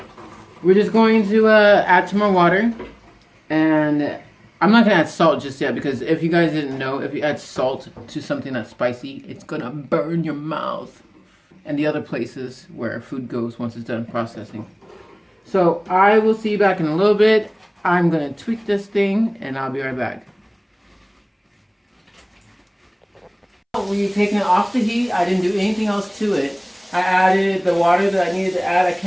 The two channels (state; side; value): identical; both; correlation 1.00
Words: we're just going to add some more water, and I'm not going to add salt just yet because if you guys didn't know, if you add salt to something that's spicy, it's going to burn your mouth and the other places where food goes once it's done processing. So I will see you back in a little bit. I'm going to tweak this thing and I'll be right back. When you're taking it off the heat, I didn't do anything else to it. I added the water that I needed to add. I